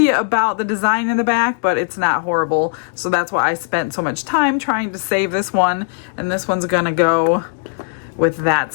about the design in the back, but it's not horrible. So that's why I spent so much time trying to save this one. And this one's gonna go with that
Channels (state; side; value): silent; right; 67 dB below the other